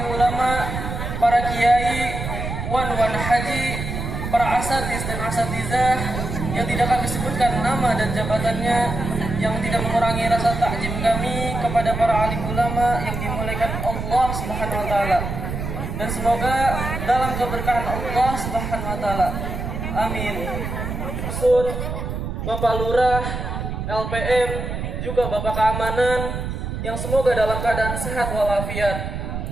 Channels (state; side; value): noise; right; rumble, 4 dB below the sound